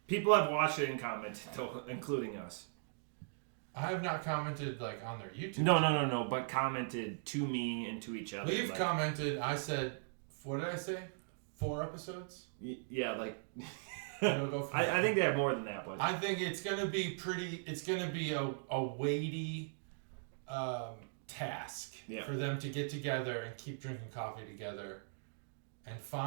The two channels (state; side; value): silent; left; digital silence